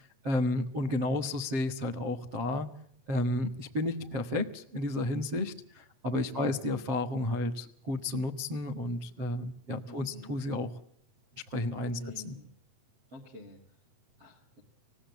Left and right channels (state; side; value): late; left; 7.6 ms